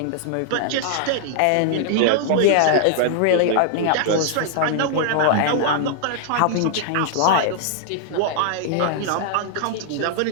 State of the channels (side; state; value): both; different; correlation -0.01